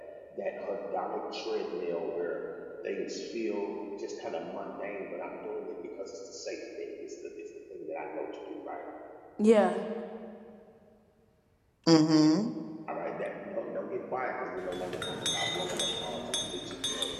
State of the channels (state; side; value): identical; both; correlation 1.00